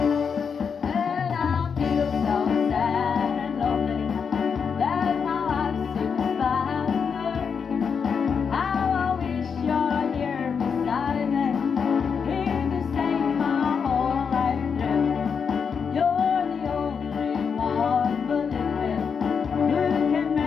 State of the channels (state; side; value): quieter; right; 6.3 dB